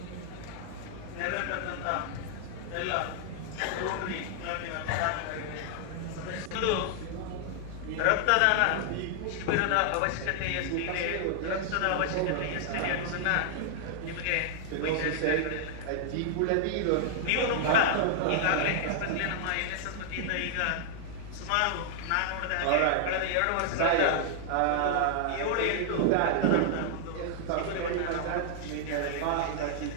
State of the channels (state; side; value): different; both; correlation 0.00